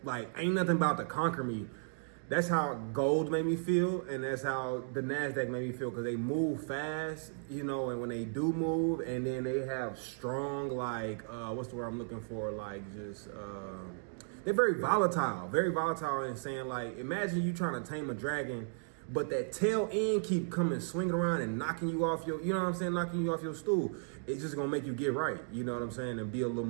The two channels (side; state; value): left; silent; digital silence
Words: like, ain't nothing about to conquer me. That's how gold made me feel, and that's how the NASDAQ made me feel, because they move fast, you know, and when they do move, and then they have strong, like, what's the word I'm looking for? Like, just, they're very volatile in saying, like, imagine you trying to tame a dragon, but that tail end keep coming, swinging around and knocking you off your, you know what I'm saying, knocking you off your stool. It's just gonna make you get right, you know what I'm saying, and be a little